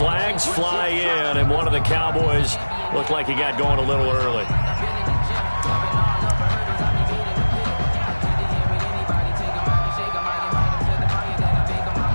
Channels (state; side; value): inverted; both; correlation -1.00